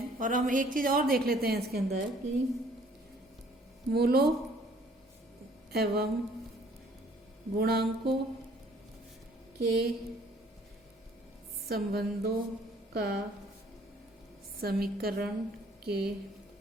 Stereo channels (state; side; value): normal; both; correlation 0.58